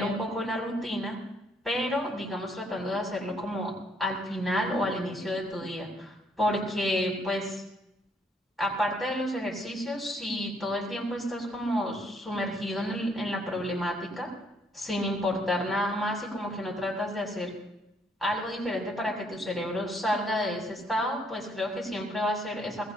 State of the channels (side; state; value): both; normal; correlation 0.68